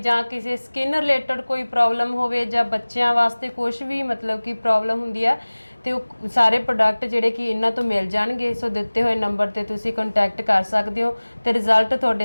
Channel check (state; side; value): inverted; both; correlation -1.00